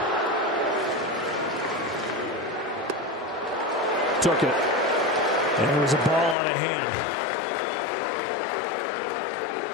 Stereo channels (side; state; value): right; drops out; at 6.4 s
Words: Took it. And it was a ball out of hand.